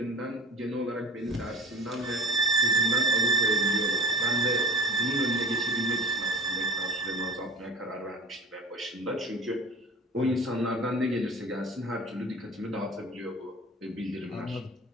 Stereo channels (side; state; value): both; normal; correlation 0.41